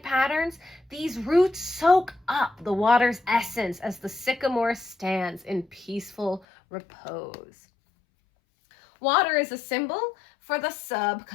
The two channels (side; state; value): right; drops out; at 6.5 s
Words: patterns, these roots soak up the water's essence as the sycamore stands in peaceful repose. Water is a symbol for the